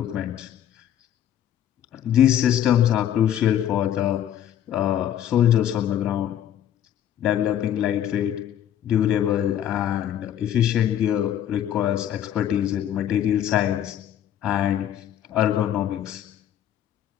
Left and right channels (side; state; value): right; quieter; 10.6 dB